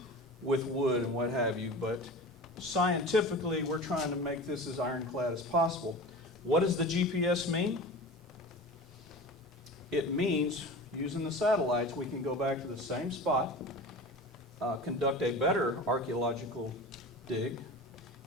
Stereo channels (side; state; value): both; normal; correlation 0.33